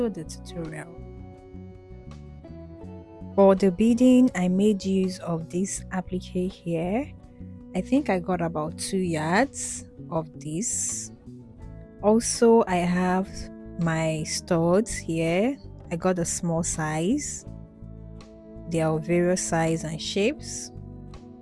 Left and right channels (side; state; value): both; identical; correlation 1.00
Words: the tutorial. For the beading, I made use of this applique here. I think I got about 2 yards of this. Also, I have my studs here. I got a small size. They are of various size and shapes.